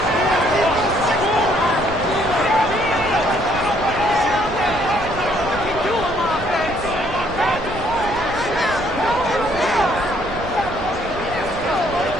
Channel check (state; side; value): noise; right; rumble, 13 dB below the sound